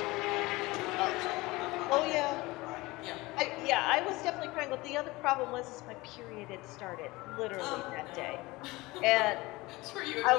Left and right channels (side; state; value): right; quieter; 21.3 dB